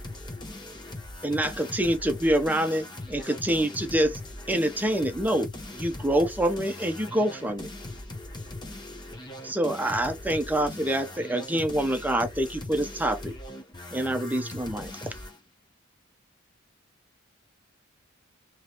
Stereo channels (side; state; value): both; normal; correlation 0.73